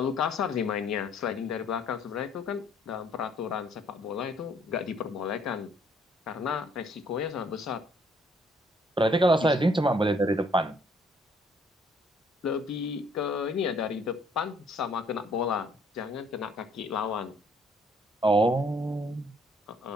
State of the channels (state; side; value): normal; both; correlation 0.63